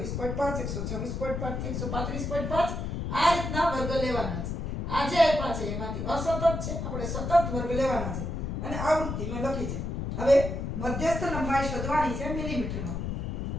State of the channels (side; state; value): left; noise; rumble, 3 dB below the sound